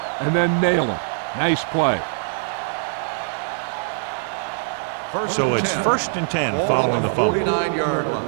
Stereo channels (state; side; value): silent; left; digital silence